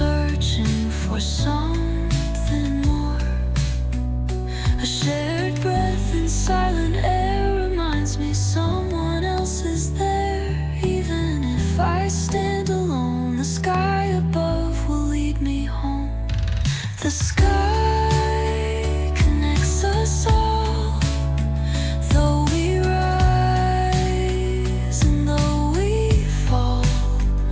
for something more. A shared breath in silent air reminds me someone else is there. Even if I stand alone, the sky above will lead me home. The sky connects us all, though we rise and though we fall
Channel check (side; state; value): both; identical; correlation 1.00